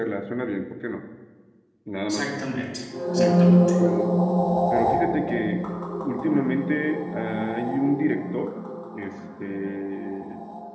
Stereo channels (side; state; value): both; identical; correlation 1.00